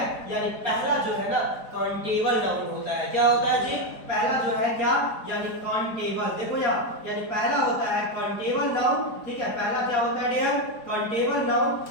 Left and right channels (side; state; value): right; late; 4.3 ms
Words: यानी पहला जो है ना काउंटेबल नाउन होता है। क्या होता है जी, पहला जो है क्या, यानी काउंटेबल, देखो यहाँ, यानी पहला होता है काउंटेबल नाउन, ठीक है। पहला क्या होता है डियर, काउंटेबल नाउन,